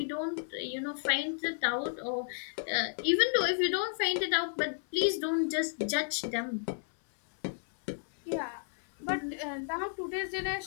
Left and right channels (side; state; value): right; silent; 56 dB below the other